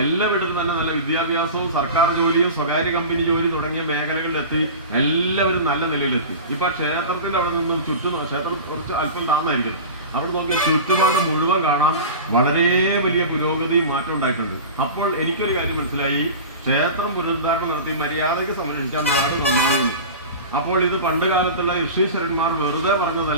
എല്ലാ വീട്ടിലും തന്നെ നല്ല വിദ്യാഭ്യാസവും സർക്കാർ ജോലിയും സ്വകാര്യ കമ്പനി ജോലി തുടങ്ങിയ മേഖലകളിലെത്തി എല്ലാവരും നല്ല നിലയിലെത്തി. ഇപ്പൊ ക്ഷേത്രത്തിന്റെ അവിടെ നിന്നും ക്ഷേത്രം കുറച്ച് അല്പം താഴ്ന്നായിരിക്കും. അവിടെ നോക്കിയാൽ ചുറ്റുപാട് മുഴുവൻ കാണാം. വളരെ വലിയ പുരോഗതി മാറ്റം ഉണ്ടായിട്ടുണ്ട്. അപ്പോൾ എനിക്കൊരു കാര്യം മനസ്സിലായി, ക്ഷേത്രം പുനരുദ്ധാരണം നടത്തി മര്യാദയ്ക്ക് സംരക്ഷിച്ചാൽ നാട് നന്നാകുന്നു. അപ്പോൾ ഇത് പണ്ട് കാലത്തുള്ള ഋഷീശ്വരന്മാർ വെറുതെ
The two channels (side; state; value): both; inverted; correlation -0.32